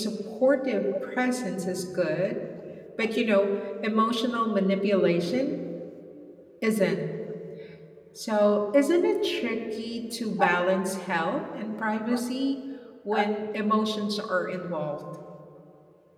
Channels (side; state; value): both; identical; correlation 1.00